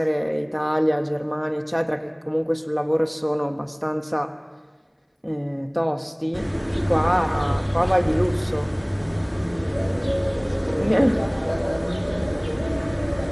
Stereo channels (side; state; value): both; identical; correlation 1.00